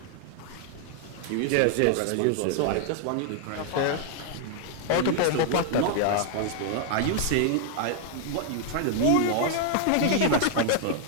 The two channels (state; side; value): different; both; correlation 0.00